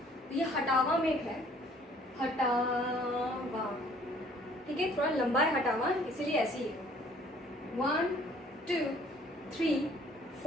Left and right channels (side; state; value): both; normal; correlation 0.57